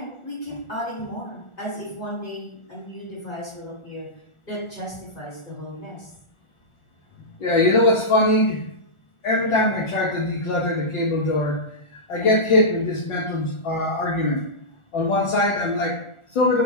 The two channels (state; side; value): late; right; 1.4 ms